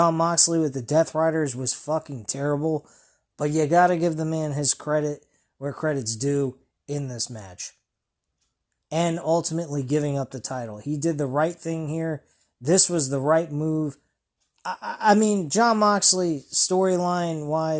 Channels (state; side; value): identical; both; correlation 1.00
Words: Moxley with the Death Riders was fucking terrible, but you gotta give the man his credit where credit's due in this match. And ultimately giving up the title. He did the right thing here. This was the right move. I mean, Jon Moxley,